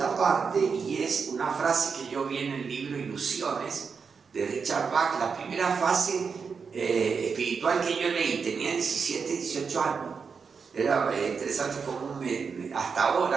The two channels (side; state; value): left; quieter; 5.6 dB